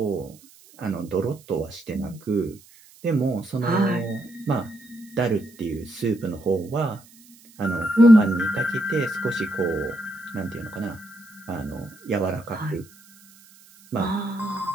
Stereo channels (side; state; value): right; noise; hiss, 25 dB below the sound